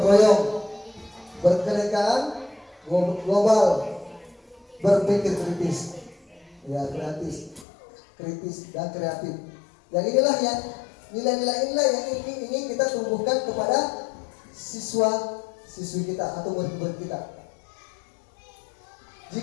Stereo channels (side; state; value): right; drops out; at 7.7 s